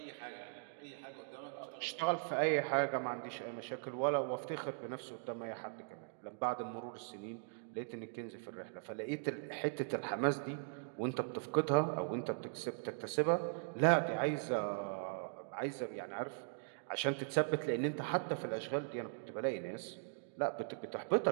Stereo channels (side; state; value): left; silent; digital silence